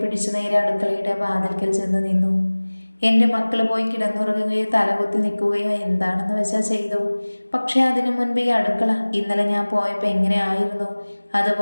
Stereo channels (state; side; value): inverted; both; correlation -1.00